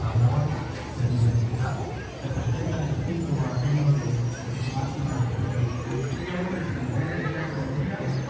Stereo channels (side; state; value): both; identical; correlation 1.00